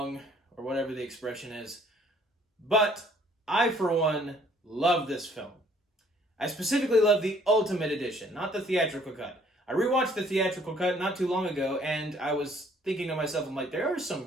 or whatever the expression is. But I, for one, love this film. I specifically love the Ultimate Edition, not the theatrical cut. I rewatched the theatrical cut not too long ago, and I was thinking to myself, I'm like, there are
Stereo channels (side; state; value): both; normal; correlation 0.60